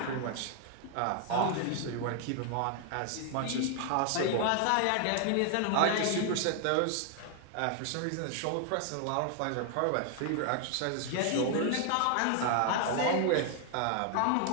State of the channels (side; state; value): both; different; correlation 0.00